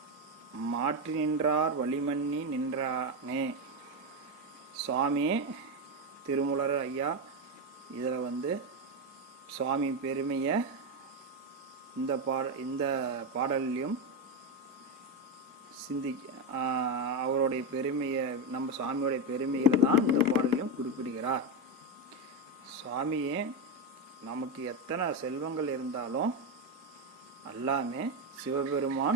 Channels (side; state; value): both; normal; correlation 0.10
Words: மாற்றி நின்றார் வழிமன்னி நின்றானே. சுவாமி திருமூலர் ஐயா இதில் சுவாமி பெருமையை இந்த பாடல்லையும் அவருடைய பெருமையை நம்ம சுவாமியோடைய பெருமையில் தான் இந்த பாடலையும் குறிப்பிடுகிறார். சுவாமியே நமக்கு எத்தனை செல்வங்கள் இருந்தாலும் எல்லாமே